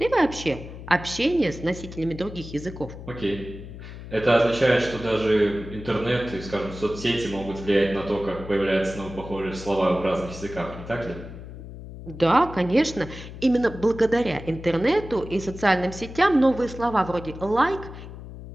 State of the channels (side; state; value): left; noise; hum, 13 dB below the sound